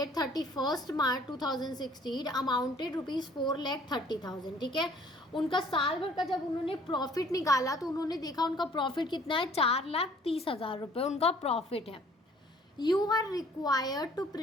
31 March 2016 amounted ₹4,30,000। ठीक है, उनका साल भर का जब उन्होंने प्रॉफिट निकाला तो उन्होंने देखा उनका प्रॉफिट कितना है? 4,30,000 रुपये उनका प्रॉफिट है। You are required to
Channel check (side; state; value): both; normal; correlation 0.56